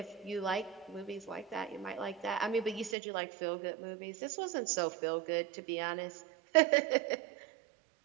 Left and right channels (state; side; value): drops out; left; at 3.0 s